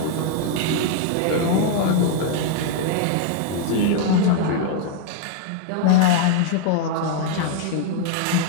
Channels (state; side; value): different; both; correlation 0.00